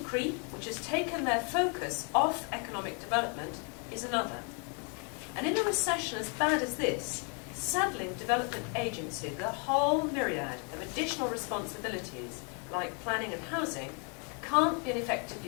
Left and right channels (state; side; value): quieter; right; 37.2 dB